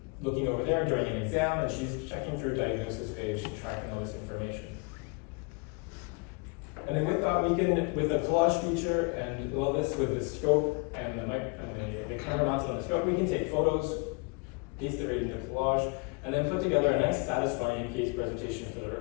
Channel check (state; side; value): quieter; right; 31.7 dB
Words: looking over there during an exam, and she's checking through diagnosis page, tracking all this information. And then with that, we can, with the collage feature and all this with the scope and the camera mounted on the scope, we can take photos, paste it right into collage, and then put together a nice satisfying case presentation for the